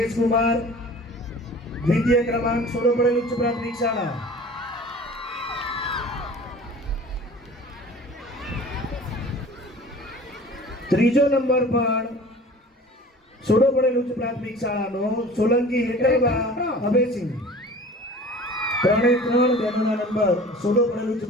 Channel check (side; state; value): both; normal; correlation 0.43